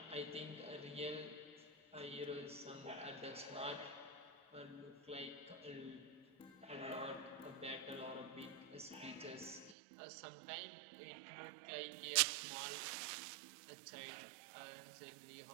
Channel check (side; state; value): left; drops out; at 9.8 s